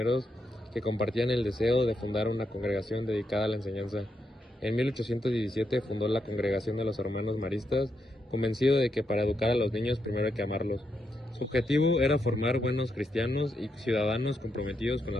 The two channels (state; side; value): normal; both; correlation 0.82